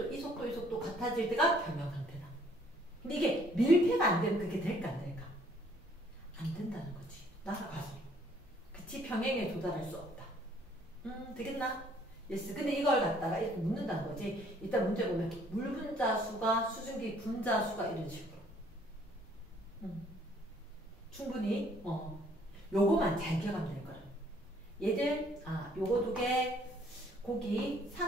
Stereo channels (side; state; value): both; normal; correlation 0.62